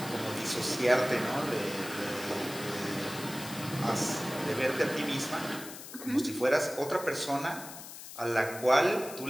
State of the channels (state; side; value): noise; left; hiss, 12 dB below the sound